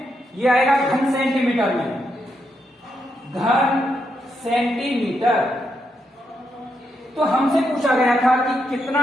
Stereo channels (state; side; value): normal; both; correlation 0.81